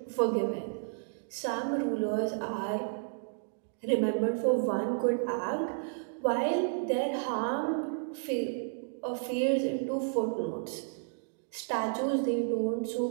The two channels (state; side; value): silent; left; digital silence